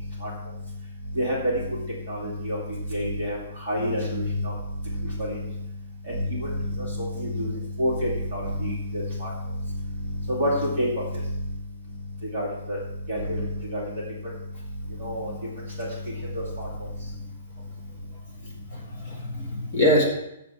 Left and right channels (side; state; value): both; inverted; correlation -0.54